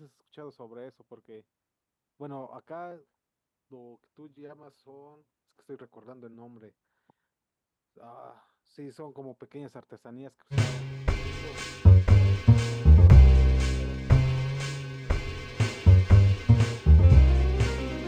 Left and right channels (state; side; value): identical; both; correlation 1.00